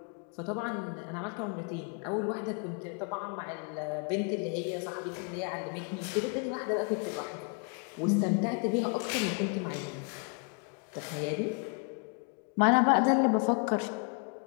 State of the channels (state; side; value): quieter; right; 38.6 dB